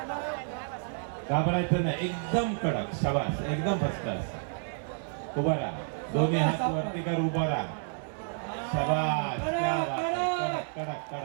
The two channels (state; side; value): silent; left; digital silence